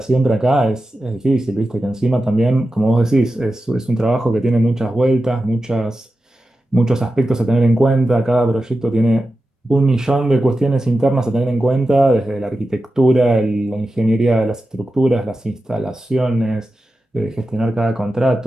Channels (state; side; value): normal; both; correlation 0.92